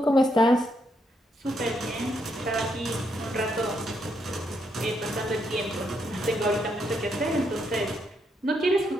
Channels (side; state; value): both; normal; correlation 0.77